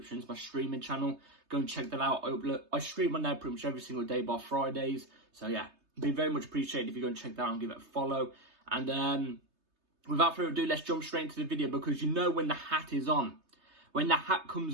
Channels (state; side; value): late; left; 3.3 ms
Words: is my streaming channel. Go and check that out. I stream on there pretty much every single day bar Fridays. So yeah, it'd be very much appreciated if you go and check that out and give it a follow. And without further ado, let's jump straight into the video, because you know when the hat is on. When the hat